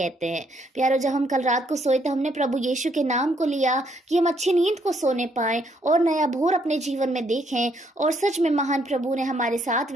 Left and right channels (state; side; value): normal; both; correlation 0.71